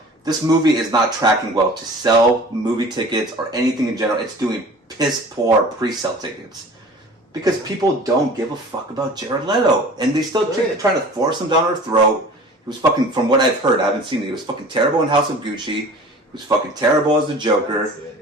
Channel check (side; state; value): both; normal; correlation 0.43